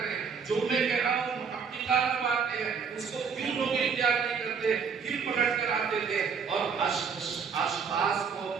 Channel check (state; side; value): quieter; left; 6.1 dB